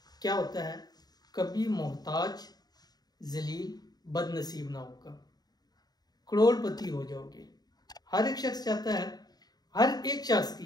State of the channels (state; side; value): late; right; 0.19 ms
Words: क्या होता है, कभी मोहताज, जलील, बदनसीब ना होगा, करोड़पति हो जाओगे। हर एक शख्स चाहता है, हर एक शख्स